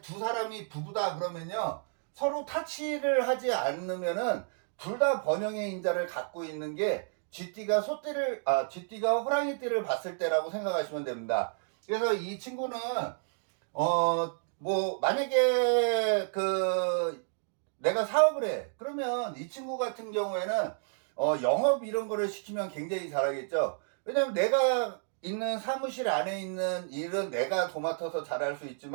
사람이 부부다 그러면요, 서로 타치를 하지 않으면은 둘 다 번영의 인자를 갖고 있는 게 쥐띠가 호랑이띠를 봤을 때라고 생각하시면 됩니다. 그래서 이 친구는, 만약에 내가 사업을 해. 그러면 이 친구 같은 경우에는, 영업 이런 거를 시키면 굉장히 잘하겠죠. 왜냐면 내가 있는 사무실 안에 있는 일은 내가 도맡아서 잘할 수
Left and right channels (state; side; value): silent; left; digital silence